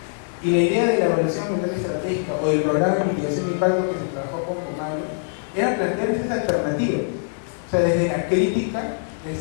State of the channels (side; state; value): right; silent; digital silence